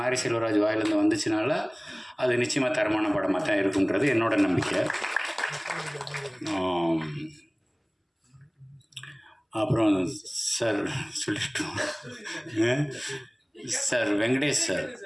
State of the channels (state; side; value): identical; both; correlation 1.00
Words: செல்வராஜ் வாயிலேருந்து வந்துச்சுனால அது நிச்சயமாக தரமான படமாக தான் இருக்குன்றது என்னோட நம்பிக்கை. அப்புறம் சார் சொல்லிட்டோம் சார், வெங்கடேஷ் சார்,